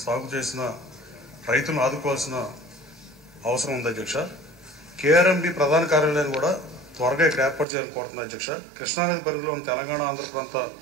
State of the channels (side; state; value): left; drops out; at 7.7 s